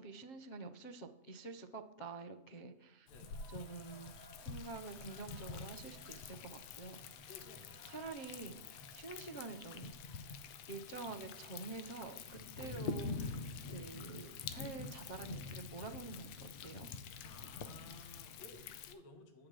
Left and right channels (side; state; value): right; late; 8.3 ms